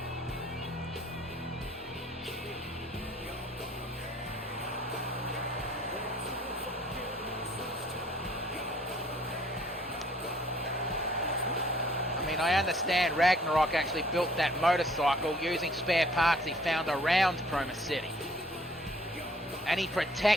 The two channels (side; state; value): both; normal; correlation 0.59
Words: I understand Ragnarok actually built that motorcycle using spare parts he found around Chroma City. And he